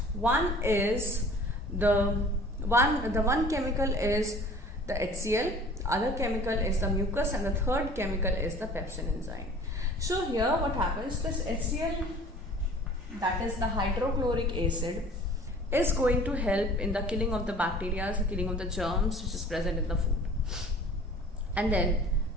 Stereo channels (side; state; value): both; normal; correlation 0.47